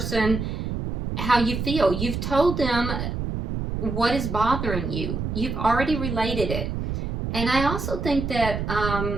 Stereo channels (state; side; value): noise; right; rumble, 3 dB below the sound